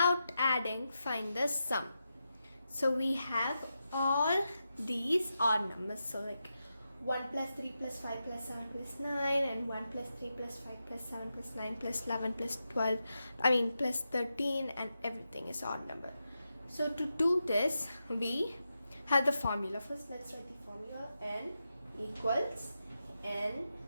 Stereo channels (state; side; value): inverted; both; correlation -0.88